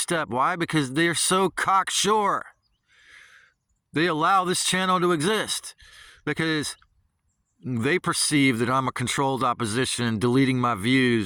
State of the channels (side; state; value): both; identical; correlation 1.00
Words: Why? Because they're so cocksure. They allow this channel to exist because they perceive that I'm a controlled opposition, deleting my